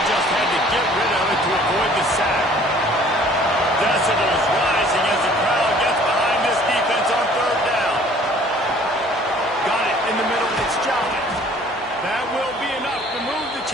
just had to get rid of it to avoid the sack. Decibels rising as the crowd gets behind this defense on 3rd down. Got it in the middle. It's Jolly. That will be enough to move the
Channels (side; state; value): both; normal; correlation 0.54